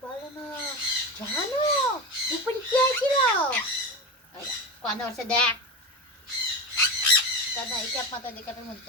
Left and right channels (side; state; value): both; normal; correlation 0.23